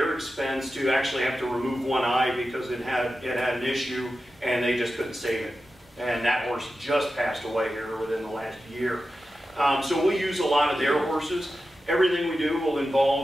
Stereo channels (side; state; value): both; normal; correlation 0.92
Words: expense to actually have to remove one eye because it had an issue, and they just couldn't save it. And that horse just passed away here within the last year. So we'll use a lot of their horses. Everything we do will